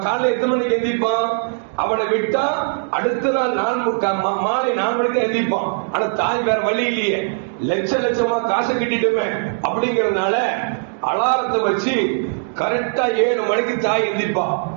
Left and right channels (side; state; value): left; silent; digital silence